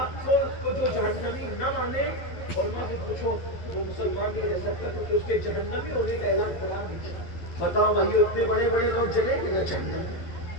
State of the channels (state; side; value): late; right; 11 ms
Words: کو جو جہنمی نہ مانے، اور میں سے پوچھو وہ مسلمان نہیں رہ سکتا کیونکہ اس کے جہنمی ہونے کا اعلان قرآن نہیں کیا۔ بتاؤ بھائی اتنے بڑے بڑے لوگ جلیں گے نہ جہنم میں،